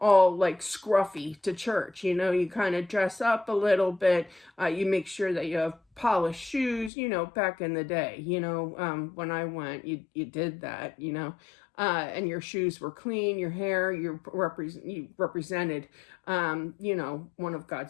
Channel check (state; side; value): drops out; right; at 6.9 s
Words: like scruffy to church. You kind of dress up a little bit. You make sure that you have polished shoes. Back in the day. When I went, you did that. And your shoes were clean, your hair, you represented, one of